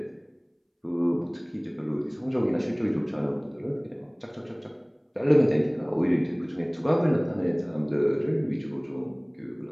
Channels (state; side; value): identical; both; correlation 1.00